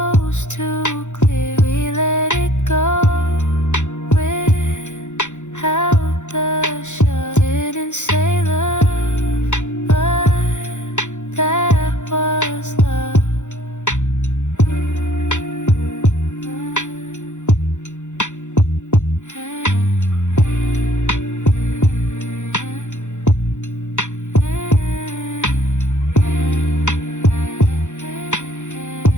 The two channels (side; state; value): right; late; 0.85 ms